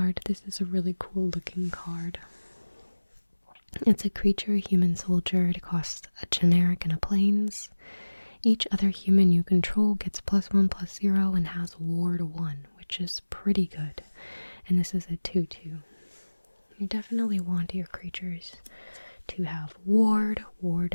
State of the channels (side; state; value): both; inverted; correlation -1.00